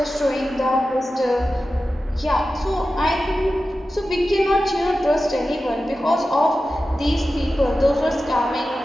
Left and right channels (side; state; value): both; normal; correlation 0.93